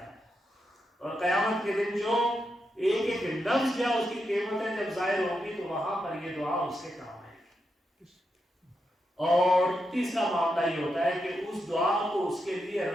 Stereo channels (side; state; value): both; normal; correlation 0.85